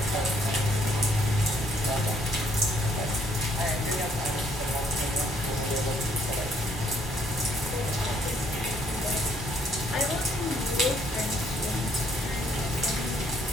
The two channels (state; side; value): normal; both; correlation 0.66